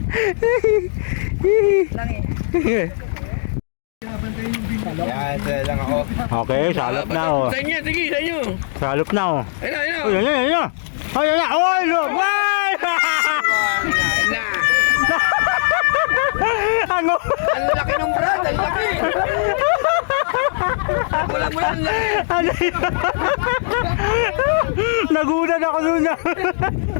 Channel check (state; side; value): silent; right; digital silence